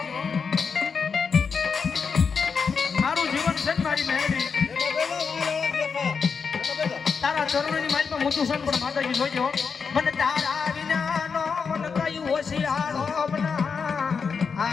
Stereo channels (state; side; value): quieter; right; 5.6 dB